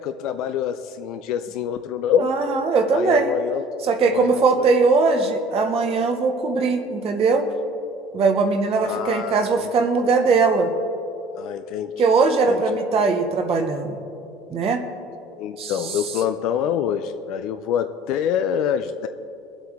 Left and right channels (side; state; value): both; normal; correlation 0.50